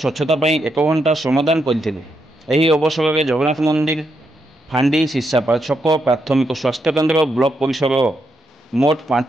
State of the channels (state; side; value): normal; both; correlation 0.81